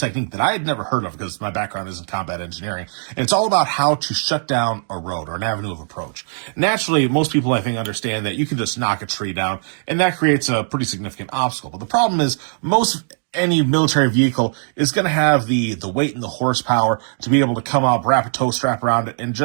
that I had never heard of because my background is in combat engineering, and it's all about how to shut down a road or an avenue of approach. Naturally, most people, I think, understand that you can just knock a tree down, and that creates a pretty significant obstacle. But the problem is, any military vehicle is going to have the weight and the horsepower to be able to come up, wrap a tow strap around it, and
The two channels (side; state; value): left; silent; digital silence